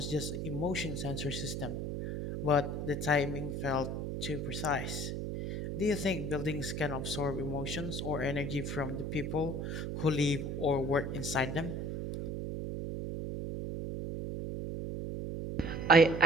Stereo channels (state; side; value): noise; right; hum, 3 dB below the sound